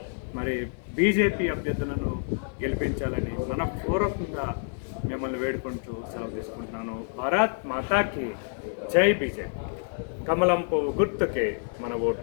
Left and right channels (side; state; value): right; silent; 59 dB below the other